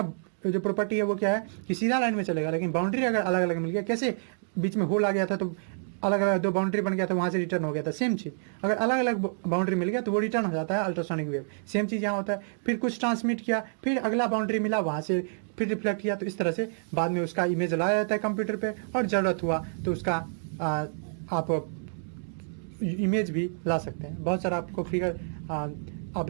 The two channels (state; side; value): silent; left; digital silence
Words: जो प्रॉपर्टी है वो क्या है कि सीधा लाइन में चलेगा, लेकिन बाउंड्री अगर अलग अलग मिल गया, कैसे बीच में होल आ गया था तो अलग अलग दो बाउंड्री बन गया था, वहाँ से रिटर्न हो गया था, सेम चीज़ अगर अलग अलग बाउंड्री मिल गया तो वो रिटर्न हो जाता है अल्ट्रासोनिक वेव। सेम चीज़ यहाँ होता है, फिर कुछ ट्रांसमिट किया, फिर अगला बाउंड्री मिला, वहाँ से फिर रिफ्लेक्ट किया, तो इस तरह से बाद में उसका इमेज लाया जाता है कंप्यूटर पे, और ज़रूरत हुआ तो उसका आप इमेज भी ला सकते हैं। बहुत सारा आपको फिगर आप